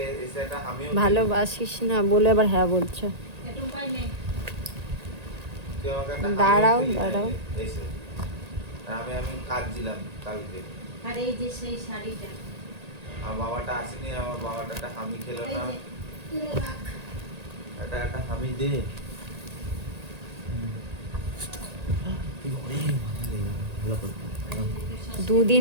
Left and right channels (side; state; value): left; late; 1.8 ms